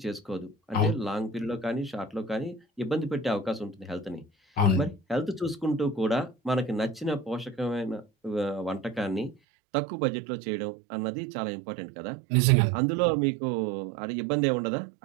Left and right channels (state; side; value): drops out; left; at 9.3 s